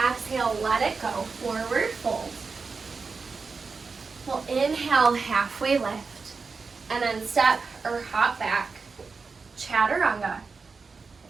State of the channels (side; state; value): left; quieter; 4.6 dB